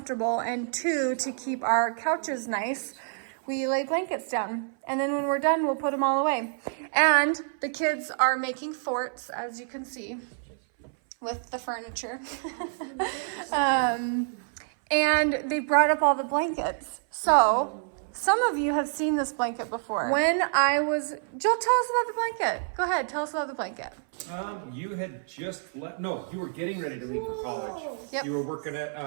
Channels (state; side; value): silent; left; 58 dB below the other